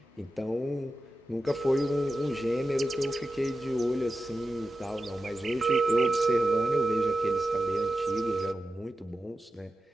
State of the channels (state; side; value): normal; both; correlation 0.92